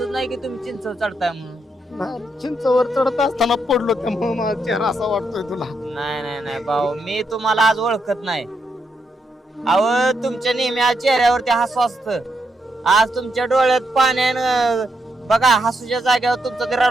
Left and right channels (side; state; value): both; normal; correlation 0.81